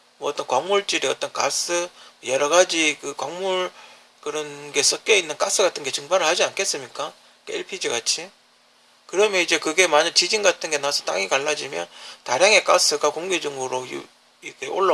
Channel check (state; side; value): identical; both; correlation 1.00